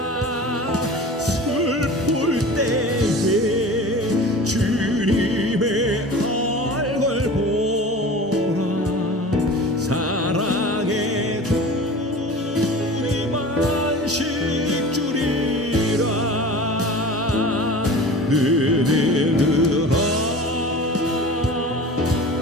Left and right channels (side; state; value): both; normal; correlation 0.37